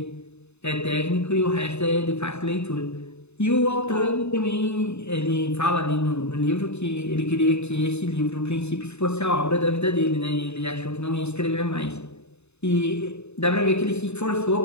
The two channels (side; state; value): right; late; 0.81 ms